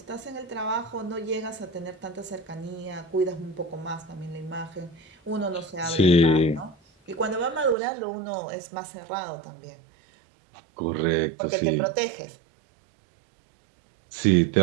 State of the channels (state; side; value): drops out; left; at 7.8 s